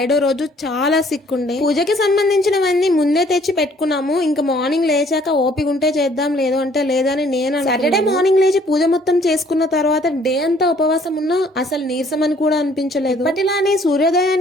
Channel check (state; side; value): normal; both; correlation 0.60